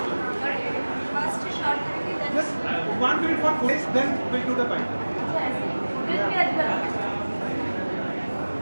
Just 1 minute for footage, then we'll do the fight.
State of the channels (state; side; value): inverted; both; correlation -1.00